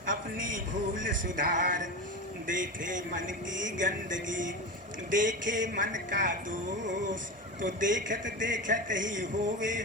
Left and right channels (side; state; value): both; normal; correlation 0.23